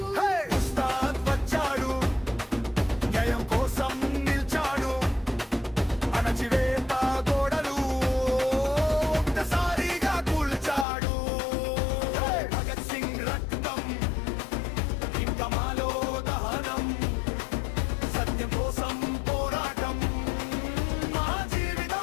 హే! ఉస్తాద్ వచ్చాడు, న్యాయం కోసం నిల్చాడు. అణచివేత గోడలు ఒక్కసారిగా కూల్చాడు. హే! భగత్ సింగ్ రక్తం ఇంకా మాలో దహనం. సత్యం కోసం పోరాటం, మా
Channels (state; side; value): drops out; right; at 10.9 s